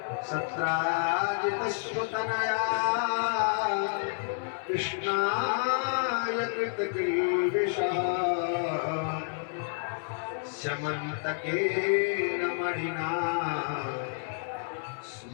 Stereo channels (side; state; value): right; silent; 58 dB below the other